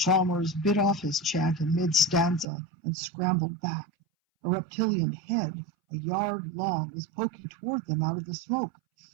bit off his chant in mid-stanza and scrambled back. A reptilian head, a yard long, was poking toward them out of the smoke.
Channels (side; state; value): left; drops out; at 2.5 s